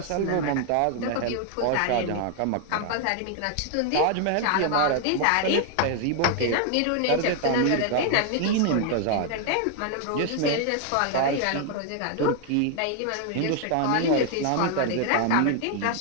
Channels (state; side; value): different; both; correlation 0.00